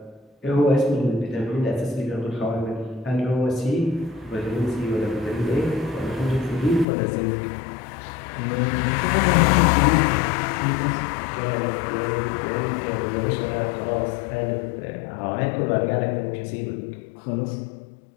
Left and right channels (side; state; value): right; drops out; at 6.9 s